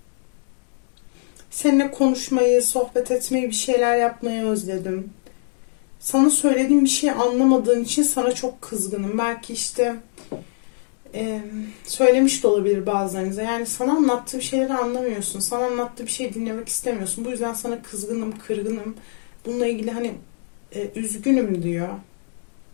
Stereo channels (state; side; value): silent; right; 64 dB below the other